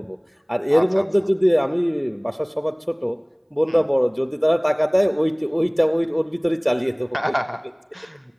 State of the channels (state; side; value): identical; both; correlation 1.00